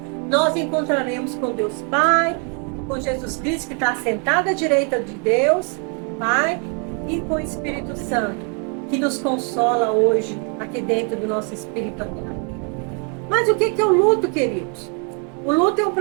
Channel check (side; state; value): left; quieter; 38.9 dB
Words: nós encontraremos com Deus Pai, com Jesus Cristo, que está sentado à direita de Deus Pai, e com o Espírito Santo, que nos consola hoje, aqui dentro do nosso espírito. Mas o que é o luto, queridos? O luto é um